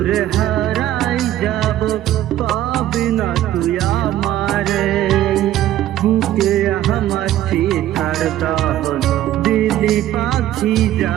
হারাই যাব, পাবি না তুই আমারে, বুকে আমার সীতার দহন দিলি পাখি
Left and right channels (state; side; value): quieter; left; 13.1 dB